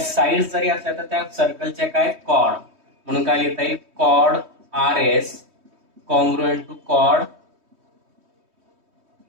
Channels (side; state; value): left; late; 3.2 ms